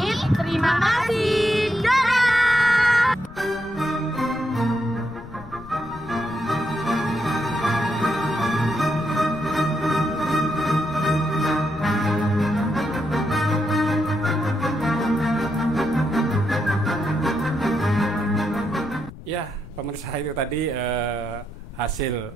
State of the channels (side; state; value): left; noise; rumble, 17 dB below the sound